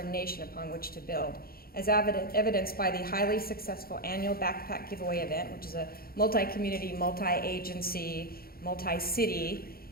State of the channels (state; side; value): late; right; 0.44 ms